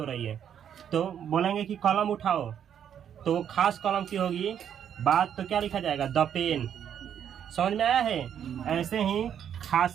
रही है। तो बोलेंगे कि कलम उठाओ, तो वो खास कलम की होगी बात, तो क्या लिखा जाएगा? The pen. समझ में आया है? ऐसे ही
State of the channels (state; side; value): quieter; left; 9.0 dB